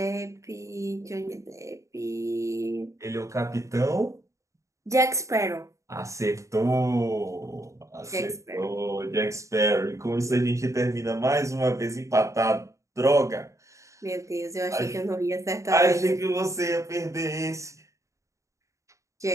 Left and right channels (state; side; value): late; left; 0.15 ms